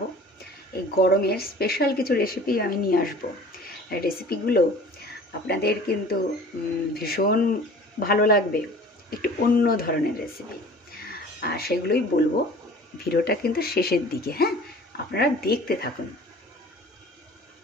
এই গরমের স্পেশাল কিছু রেসিপি আমি নিয়ে আসবো। রেসিপিগুলো আপনাদের কিন্তু ভীষণ ভালো লাগবে, একটু অন্য ধরনের রেসিপি, আর সেগুলোই বলবো। ভিডিওটা কিন্তু শেষের দিকে, হ্যাঁ, আপনারা দেখতে থাকুন।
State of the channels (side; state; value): both; normal; correlation 0.46